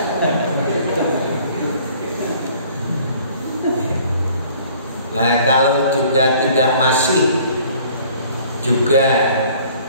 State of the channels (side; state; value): both; inverted; correlation -0.55